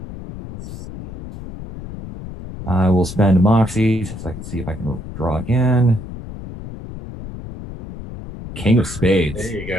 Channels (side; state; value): left; noise; rumble, 11 dB below the sound